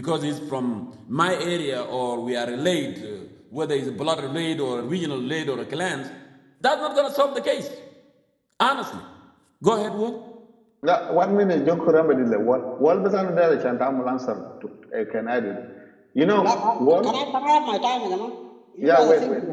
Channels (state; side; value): identical; both; correlation 1.00